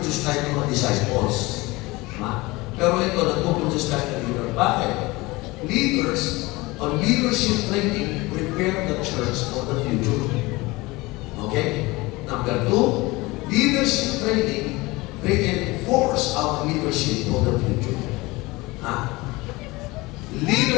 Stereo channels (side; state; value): right; quieter; 22.1 dB